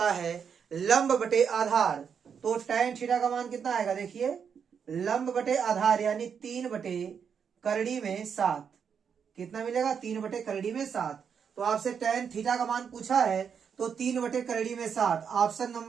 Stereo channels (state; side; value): quieter; left; 7.0 dB